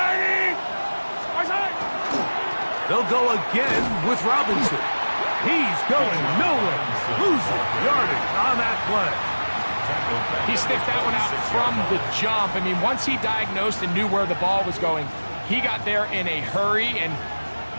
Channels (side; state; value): both; inverted; correlation -1.00